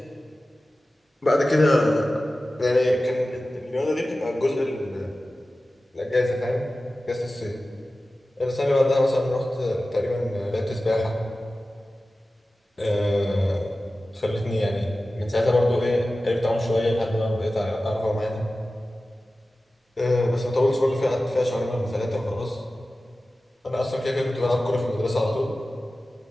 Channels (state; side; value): normal; both; correlation 0.95